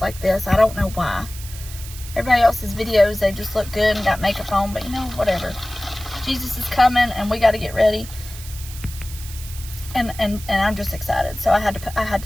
this. I don't know why. Everybody else's videos, they just look good and got makeup on. But, you know, whatever. Jesus is coming, and we got to get ready. And I'm just excited. So I had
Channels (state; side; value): noise; right; hiss, 14 dB below the sound